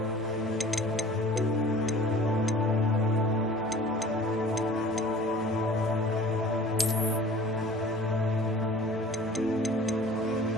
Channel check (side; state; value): both; normal; correlation 0.46